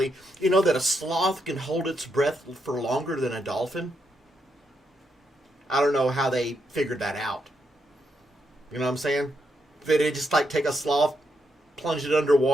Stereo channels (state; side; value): normal; both; correlation 0.80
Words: You know that a sloth can hold its breath for longer than a dolphin? I don't know how they figured that out. You know what I'm saying? They just like take a sloth, plunge it